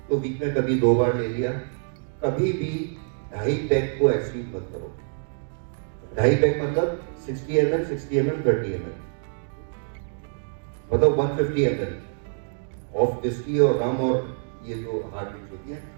तो वीक में कभी 2 बार ले लिया। कभी भी 2.5 पैक को एक्सीड मत करो। 2.5 पैक मतलब 60 ml, 60 ml, 30 ml, मतलब 150 ml ऑफ विस्की और रम और ये जो हार्ड ड्रिंक्स होती है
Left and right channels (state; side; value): silent; left; digital silence